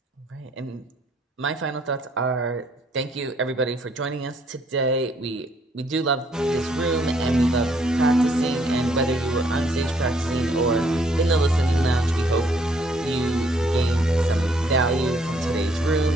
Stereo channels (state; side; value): normal; both; correlation 0.66